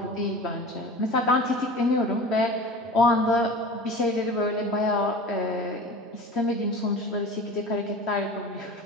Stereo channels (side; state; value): both; normal; correlation 0.36